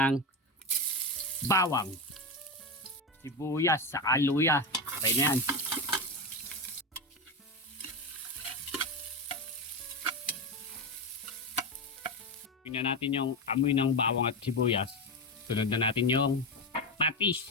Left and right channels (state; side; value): normal; both; correlation 0.15